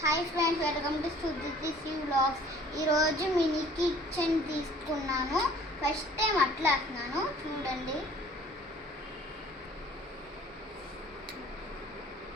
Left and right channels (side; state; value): both; normal; correlation 0.52